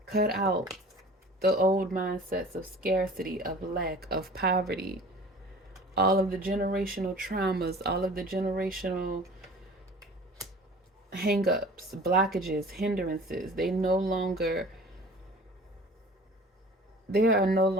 Cut out the old mindsets of scarcity, of lack, of poverty, all of the generational traumas, all of the generational hang-ups, blockages, hindrances. There are no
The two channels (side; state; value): both; normal; correlation 0.44